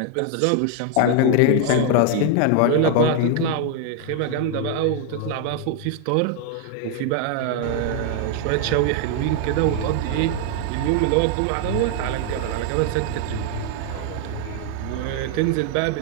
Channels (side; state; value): both; different; correlation 0.00